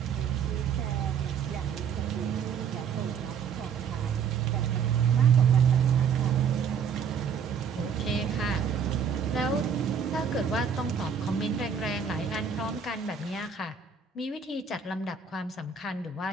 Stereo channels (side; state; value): left; quieter; 6.8 dB